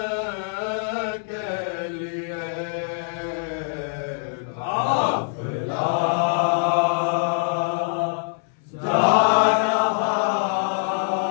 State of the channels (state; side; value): silent; right; 62 dB below the other